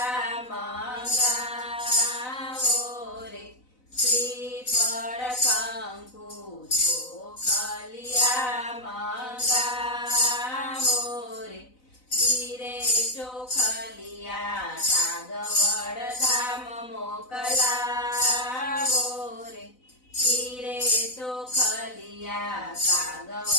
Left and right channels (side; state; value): right; late; 4.0 ms